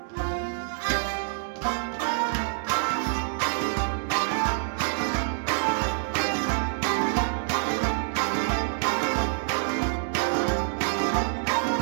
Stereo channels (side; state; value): left; silent; 60 dB below the other